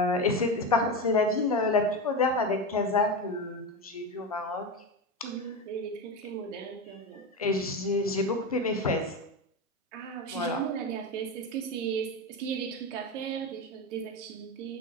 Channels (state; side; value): normal; both; correlation 0.18